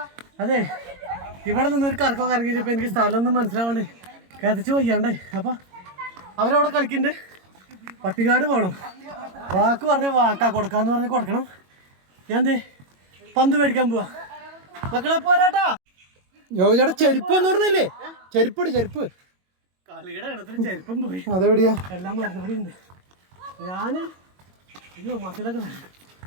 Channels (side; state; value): left; late; 22 ms